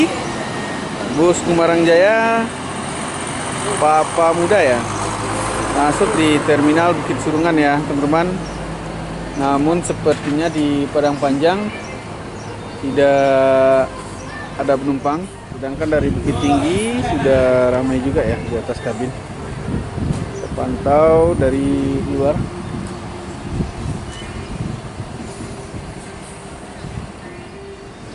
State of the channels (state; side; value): identical; both; correlation 1.00